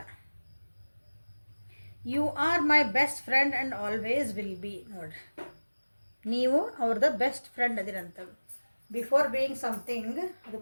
You are my best friend and always will be. ನೋಡ್ರಿ, ನೀವು ಅವ್ರದ್ದು ಬೆಸ್ಟ್ ಫ್ರೆಂಡ್ ಅದಿರಂತ. ಬಿಫೋರ್ ಬೀಯಿಂಗ್ ಸಮಥಿಂಗ್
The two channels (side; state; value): both; inverted; correlation -1.00